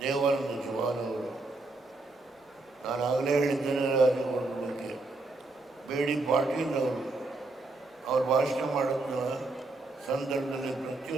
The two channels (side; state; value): left; quieter; 3.2 dB